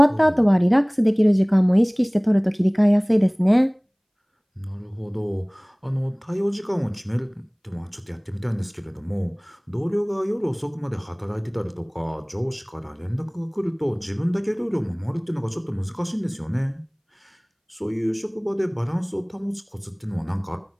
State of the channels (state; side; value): identical; both; correlation 1.00